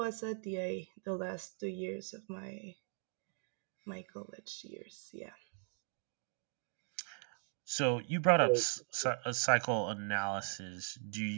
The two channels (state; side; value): silent; left; 52 dB below the other